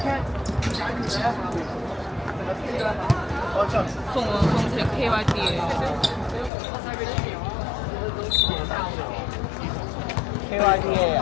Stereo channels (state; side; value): drops out; right; at 6.5 s